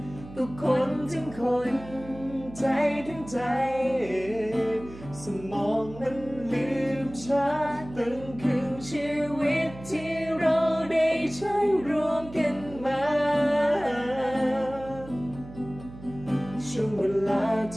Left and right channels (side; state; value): right; noise; hum, 16 dB below the sound